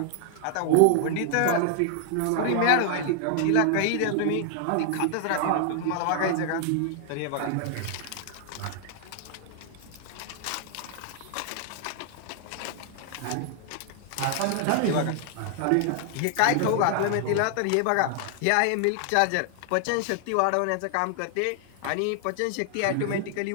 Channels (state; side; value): different; both; correlation 0.00